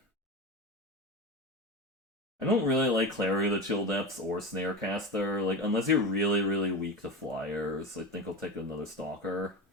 I don't really like Clary of the Chill Depths or Snarecaster. Like, unless you're really, really weak to flyers, I think I'll take another Stalker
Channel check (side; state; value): both; normal; correlation 0.23